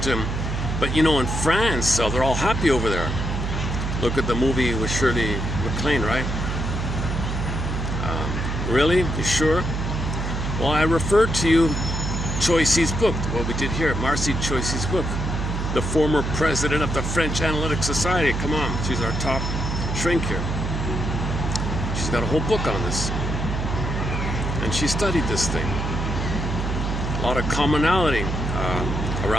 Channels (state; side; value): noise; right; hum, 2 dB below the sound